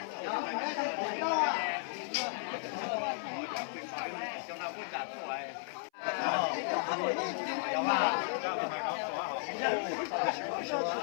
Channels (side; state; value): right; silent; 55 dB below the other